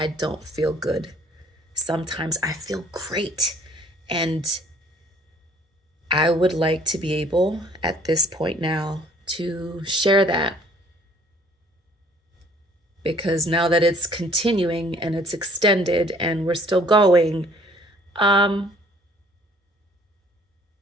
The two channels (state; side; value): normal; both; correlation 0.57